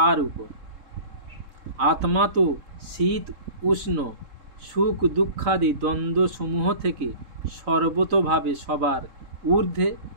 উপর? আত্মা তো শীত উষ্ণ সুখ দুঃখাদি দ্বন্দ্ব সমূহ থেকে সর্বতোভাবে সবার ঊর্ধ্বে।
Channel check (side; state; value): left; late; 3.7 ms